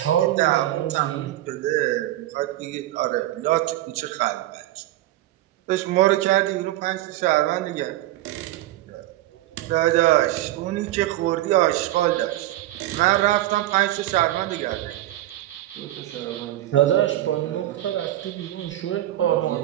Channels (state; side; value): quieter; left; 15.0 dB